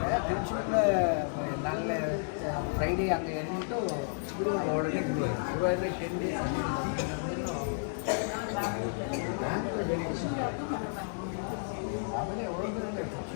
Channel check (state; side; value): silent; right; 56 dB below the other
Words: ನಾಳೆ ಫ್ರೈಡೇ ಹಂಗೆ ಹೇಳ್ಬಿಟ್ಟು ಒಳಗೆ ಶುರುವಾದರೆ 10 days ಆಮೇಲೆ ಹೋದ್ರೆ